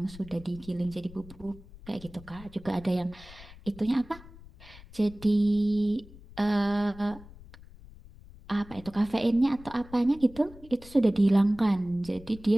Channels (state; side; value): noise; left; rumble, 19 dB below the sound